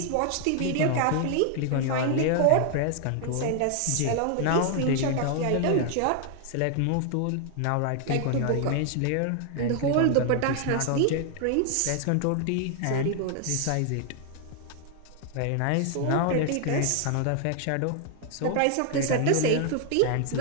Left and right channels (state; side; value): different; both; correlation 0.00